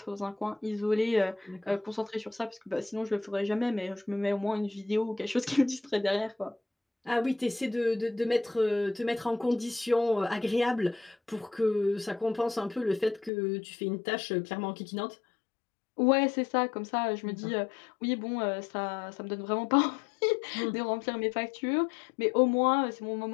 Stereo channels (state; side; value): drops out; right; at 13.3 s